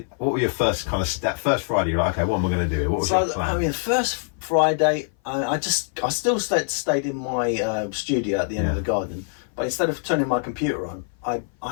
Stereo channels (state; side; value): silent; right; 57 dB below the other